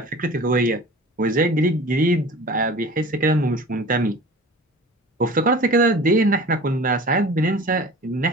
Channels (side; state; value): both; normal; correlation 0.40